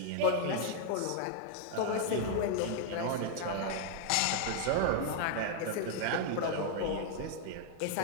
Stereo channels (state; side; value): different; both; correlation 0.00